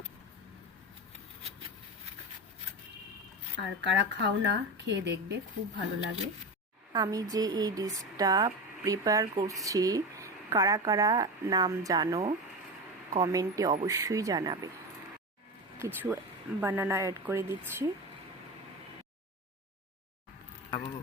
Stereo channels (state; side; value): normal; both; correlation 0.22